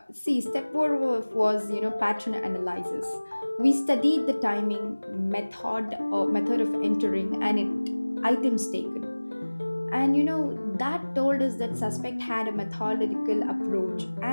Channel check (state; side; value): inverted; both; correlation -1.00